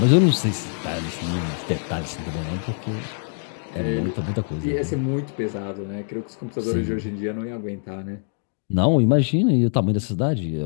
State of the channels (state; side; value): silent; right; 61 dB below the other